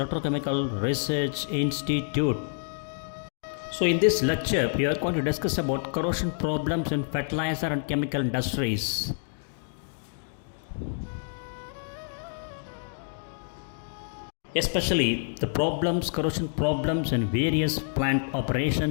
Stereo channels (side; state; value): right; silent; digital silence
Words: Research Institute. So in this lecture, we are going to discuss about corrosion problems in fertilizer and chemical industries. Especially the corrosion problems in various plant